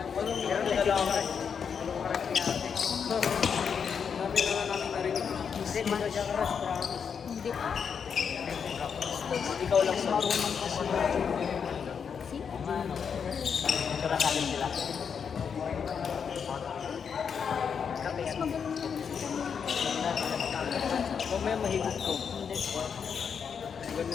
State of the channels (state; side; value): quieter; right; 6.8 dB